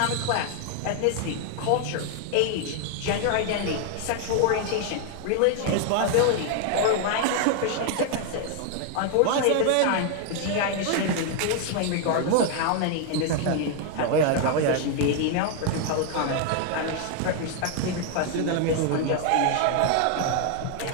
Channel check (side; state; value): both; different; correlation 0.00